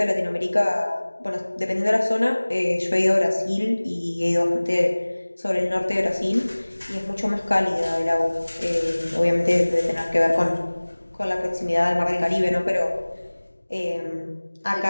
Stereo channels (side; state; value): both; inverted; correlation -1.00